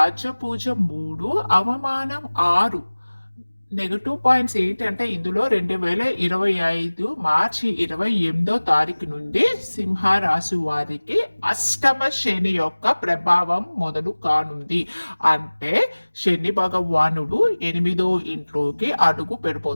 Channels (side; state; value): both; inverted; correlation -1.00